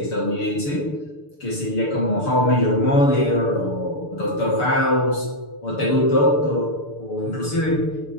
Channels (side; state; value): right; late; 6.8 ms